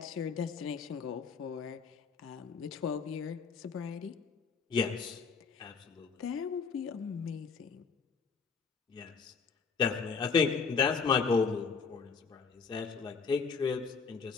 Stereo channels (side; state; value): right; quieter; 5.4 dB